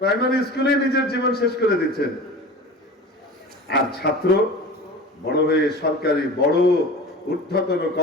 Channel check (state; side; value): normal; both; correlation 0.36